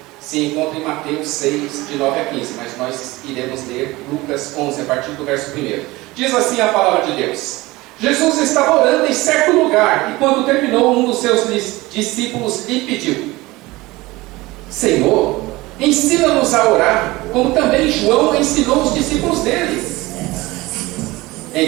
se encontra em Mateus 6, de 9 a 15, mas nós iremos ler Lucas 11, a partir do verso 1. Diz assim a palavra de Deus: Jesus estava orando em certo lugar, e quando terminou, um dos seus discípulos lhe pediu: Senhor, ensina-nos a orar, como também João ensinou os discípulos dele.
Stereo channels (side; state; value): left; quieter; 20.6 dB